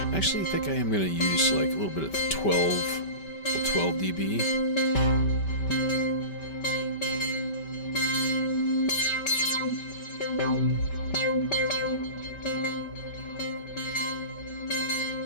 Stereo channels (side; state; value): right; late; 5.1 ms